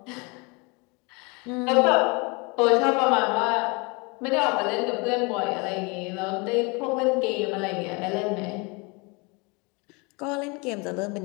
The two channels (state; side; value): quieter; right; 29.2 dB